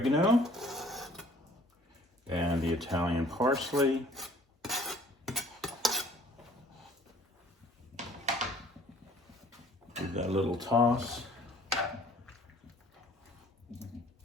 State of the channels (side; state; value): both; normal; correlation 0.55